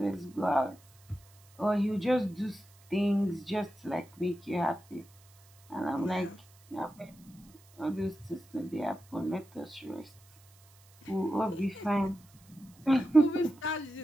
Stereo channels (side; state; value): right; noise; hiss, 28 dB below the sound